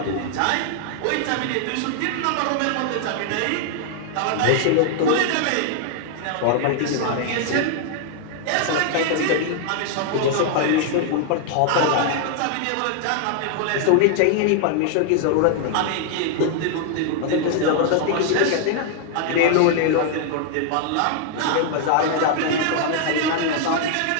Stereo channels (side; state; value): both; different; correlation 0.00